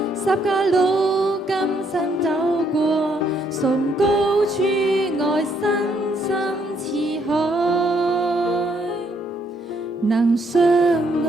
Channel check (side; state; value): both; normal; correlation 0.71